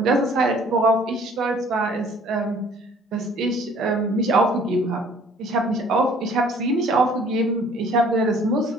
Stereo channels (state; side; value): normal; both; correlation 0.55